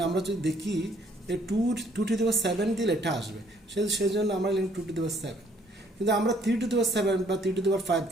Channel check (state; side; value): normal; both; correlation 0.63